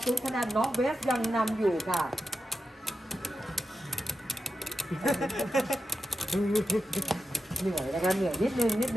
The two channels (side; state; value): both; normal; correlation 0.90